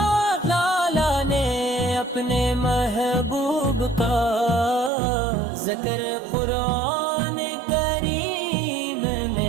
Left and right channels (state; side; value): drops out; left; at 4.9 s